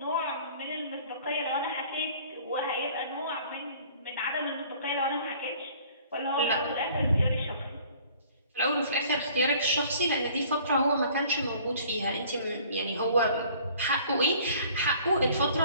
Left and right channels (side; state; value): both; inverted; correlation -0.53